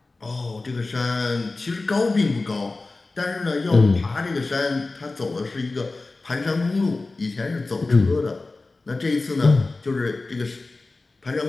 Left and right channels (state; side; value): quieter; right; 3.4 dB